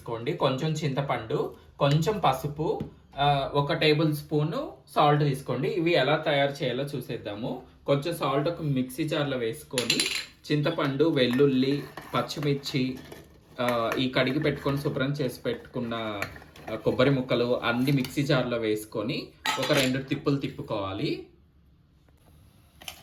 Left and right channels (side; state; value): both; identical; correlation 1.00